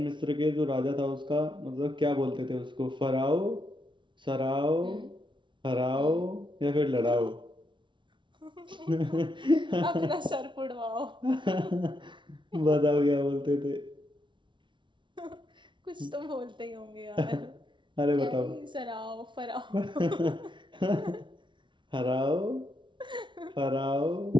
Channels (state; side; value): late; left; 0.24 ms